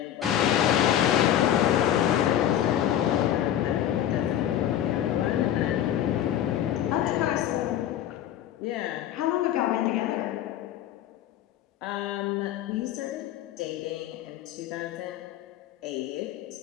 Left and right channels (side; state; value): right; quieter; 11.2 dB